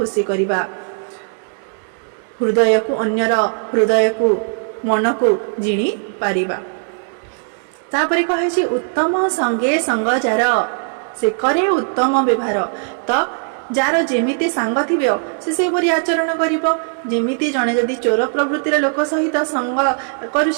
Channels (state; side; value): silent; left; 60 dB below the other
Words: କରିବା, ହୃଦୟକୁ ଅନ୍ୟର ହୃଦୟକୁ ମନକୁ ଜିଣି ପାରିବା। ତାପରେ କହିଛି ଉତ୍ତମ ସଙ୍ଗେ ସଙ୍ଗ ଯାର ସେ କରେ ଉତ୍ତମ ବ୍ୟବହାର। ତ ଯାହାର ଯେମିତି ସାଙ୍ଗ ଥିବ ସେ ସେହିପରି ଆଚରଣ କରିବ। ଯେମିତି ଜଣେ ଯଦି ଚୋର ପ୍ରବୃତ୍ତିର ଲୋକ ସହିତ ସଙ୍ଗ